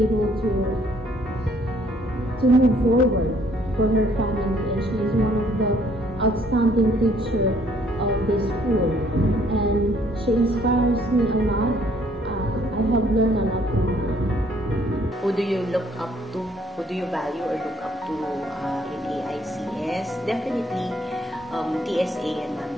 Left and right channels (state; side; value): normal; both; correlation 0.64